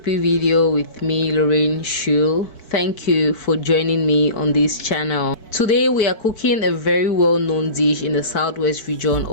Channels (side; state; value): right; late; 4.6 ms